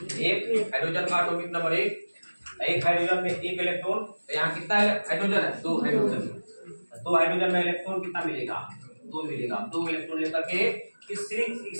एक हाइड्रोजन का एटॉमिक नंबर 1, एक हाइड्रोजन में एक इलेक्ट्रॉन। तो यहाँ कितना हाइड्रोजन है? 2 हाइड्रोजन। 2 हाइड्रोजन में इलेक्ट्रॉन कितना मिलेगा? 2 मिलेगा। 2 इलेक्ट्रॉन लेकर के इस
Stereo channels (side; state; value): both; inverted; correlation -1.00